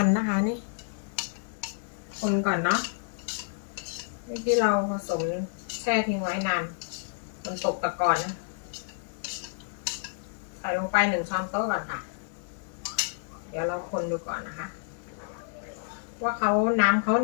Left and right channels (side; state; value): right; silent; digital silence